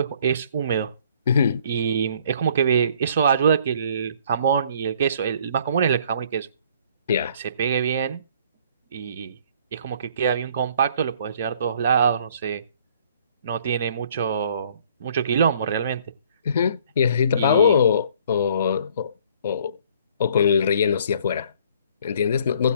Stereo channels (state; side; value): inverted; both; correlation -0.59